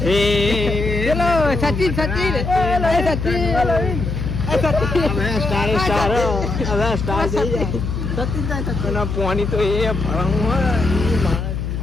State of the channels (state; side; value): noise; left; hum, 3 dB below the sound